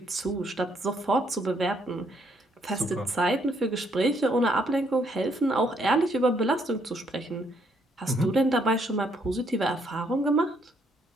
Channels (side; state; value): both; normal; correlation 0.71